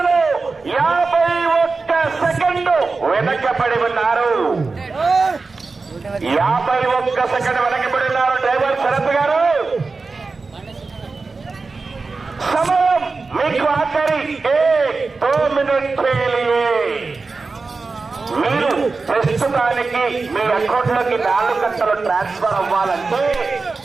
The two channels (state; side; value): quieter; left; 4.1 dB